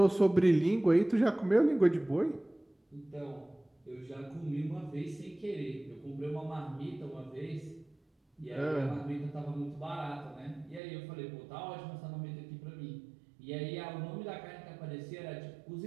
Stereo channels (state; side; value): drops out; left; at 10.8 s